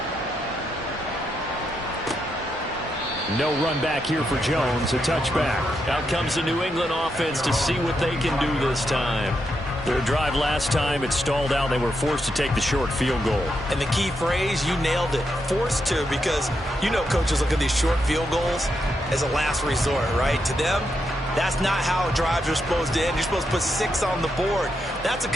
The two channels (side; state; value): both; normal; correlation 0.82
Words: No run back here for Jones, a touchback. Out comes the New England offense to see what they can do this time. Their drive last time, it stalled out. They were forced to take the short field goal. And the key phrase, you nailed it, forced to, because you know coaches look at these short field goals as a last resort, right? To them, that's not how drives are supposed to end. You're supposed to put 6 on the board. That's a